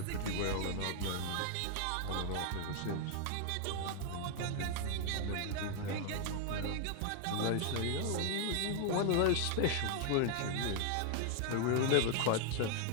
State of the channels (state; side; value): different; both; correlation 0.00